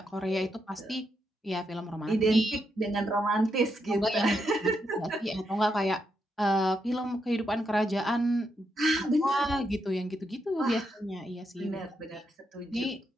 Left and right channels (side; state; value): both; normal; correlation 0.81